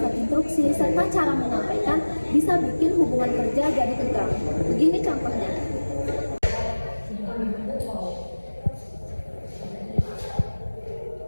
instruksi, serta cara menyampaikan bisa bikin hubungan kerja jadi tegang. Begini contohnya.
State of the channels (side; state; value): both; inverted; correlation -1.00